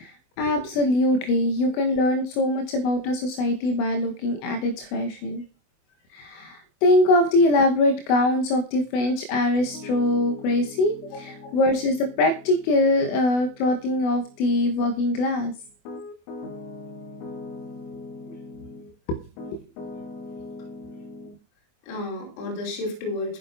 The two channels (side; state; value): right; late; 24 ms